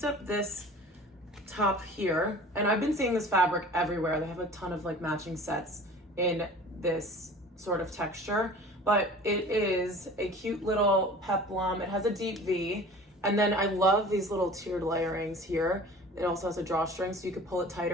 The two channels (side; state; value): both; normal; correlation 0.42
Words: up this top here, and I've been seeing this fabric everywhere. They have a ton of like matching sets in this sort of texture, but it is a cute little peplum. It has a deep V, and then I love these little tiered layerings here. It also has a drawstring, so you could pull it